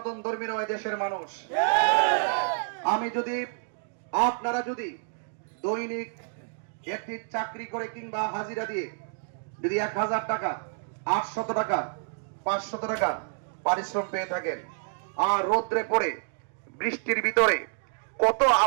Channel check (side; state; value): left; silent; digital silence